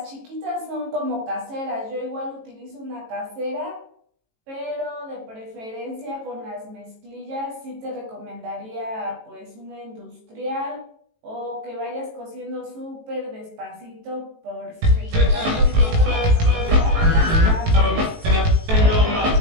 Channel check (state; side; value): late; left; 18 ms